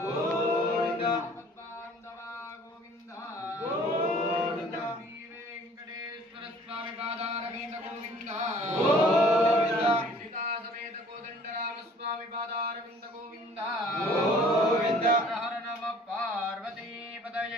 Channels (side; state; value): both; normal; correlation 0.53